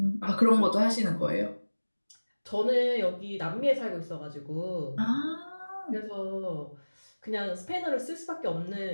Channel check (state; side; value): inverted; both; correlation -1.00